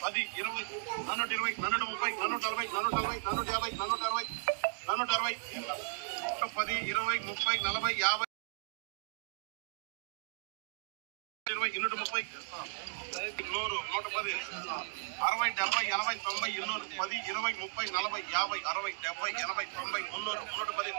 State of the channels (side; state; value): left; silent; digital silence